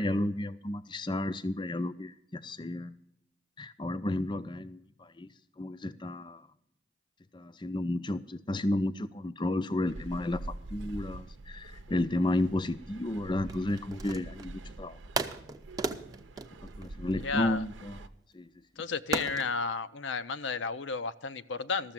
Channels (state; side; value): normal; both; correlation 0.65